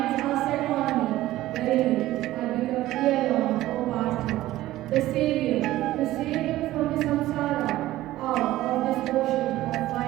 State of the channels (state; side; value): quieter; left; 15.7 dB